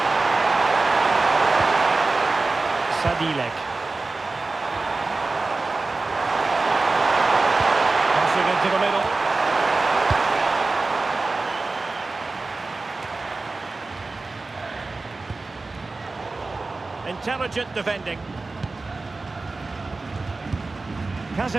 Sadilek. Passing into the middle. Intelligent defending.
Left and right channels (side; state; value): left; quieter; 3.5 dB